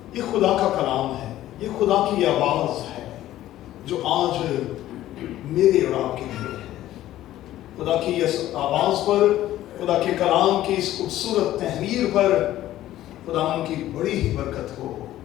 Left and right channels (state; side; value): quieter; right; 13.9 dB